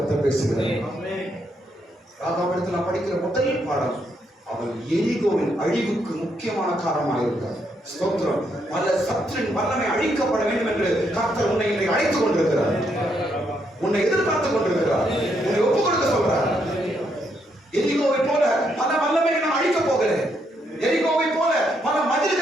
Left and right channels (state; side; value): normal; both; correlation 0.76